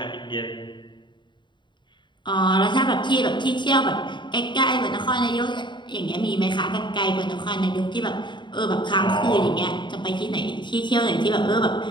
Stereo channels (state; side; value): late; right; 0.22 ms